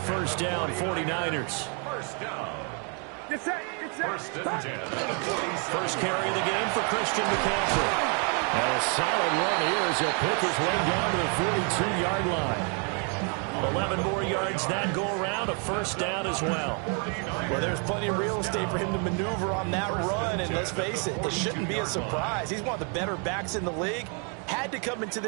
down, 49ers. First down. Get set, get set. First and 10. First carry of the game for Christian McCaffrey. And a solid run here as he'll pick his way down to the 42-yard line. 11 more yards that go around, a first down as well. Well, there's plenty of real estate for him to maneuver on that run, and let's face it, it shouldn't be a surprise. He's one of the better backs in the league. Had to come into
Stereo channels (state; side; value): quieter; left; 38.2 dB